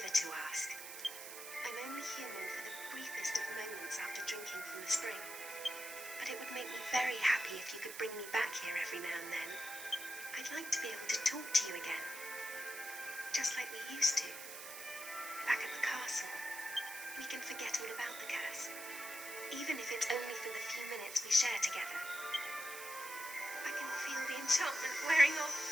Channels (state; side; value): noise; right; hiss, 10 dB below the sound